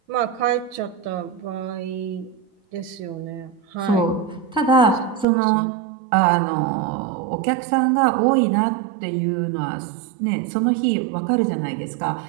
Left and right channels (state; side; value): drops out; left; at 5.2 s